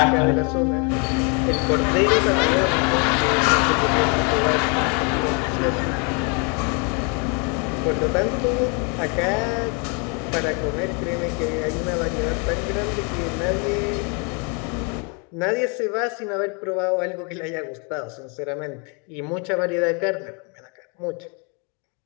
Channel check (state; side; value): quieter; right; 34.9 dB